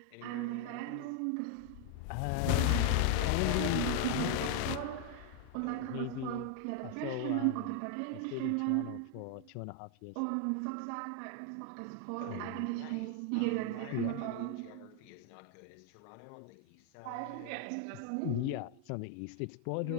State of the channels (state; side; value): different; both; correlation 0.00